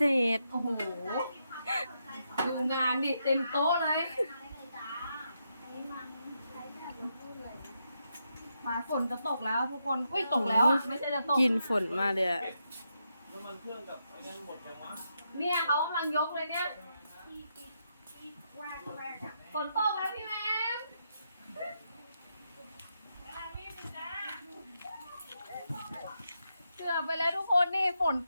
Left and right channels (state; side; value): inverted; both; correlation -0.82